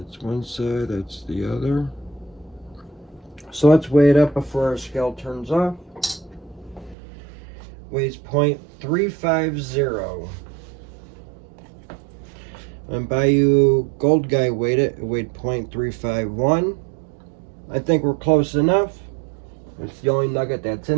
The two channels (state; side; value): drops out; left; at 7.0 s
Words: one side, that's the other. So let's weigh it up before our scale turns off. Weighs 0.350. And Bayou Gold Guy weighed it. It weighed 0.351. I think we're close enough. It's the only nugget that's